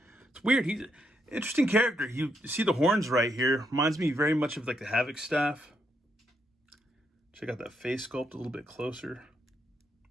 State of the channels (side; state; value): both; normal; correlation 0.78